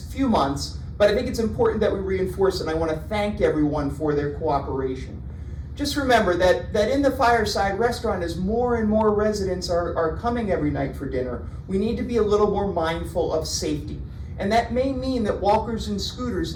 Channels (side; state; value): both; identical; correlation 1.00